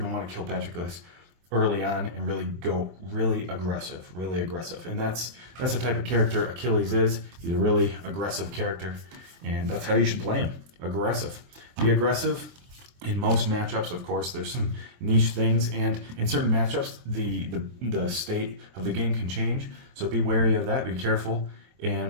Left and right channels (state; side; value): late; left; 23 ms